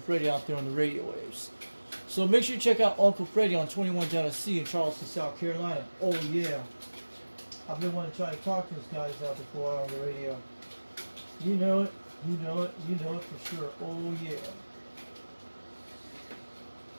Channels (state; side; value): inverted; both; correlation -1.00